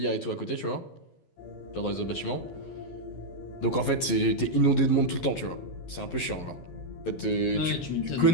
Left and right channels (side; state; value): right; late; 11 ms